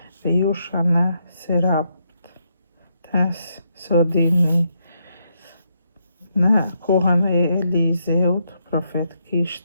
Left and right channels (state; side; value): inverted; both; correlation -0.79